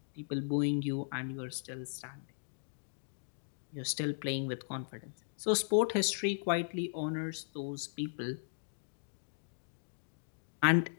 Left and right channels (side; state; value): right; silent; digital silence